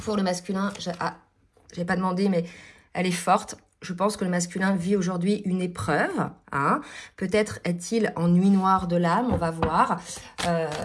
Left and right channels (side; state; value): both; identical; correlation 1.00